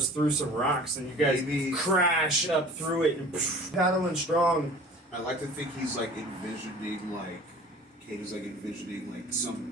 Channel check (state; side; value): normal; both; correlation 0.45